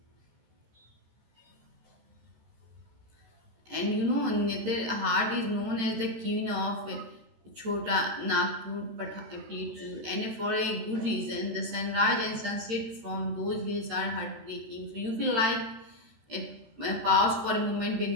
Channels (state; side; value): late; left; 13 ms